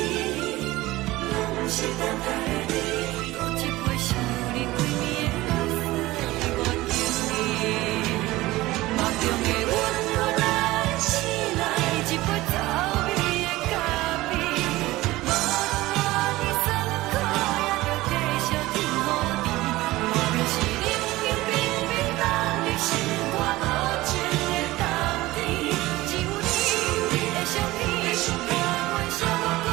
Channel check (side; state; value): left; quieter; 18.5 dB